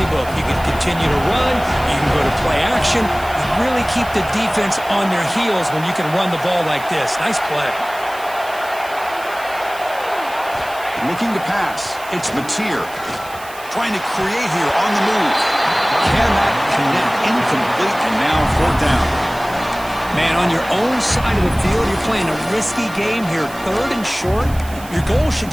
You can continue to run. You can go to play action. You really keep the defense on their heels when you can run the ball like this. Nice play. Looking to pass. It's Mateer. Trying to create here on the move. Cannot connect. Incomplete, and now 4th down. Man, on your own side of the field, you're playing a risky game here. 3rd and short. Your goal should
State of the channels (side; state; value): right; noise; hiss, 18 dB below the sound